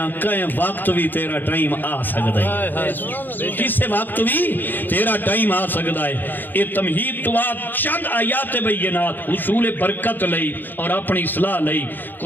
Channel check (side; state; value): right; late; 0.090 ms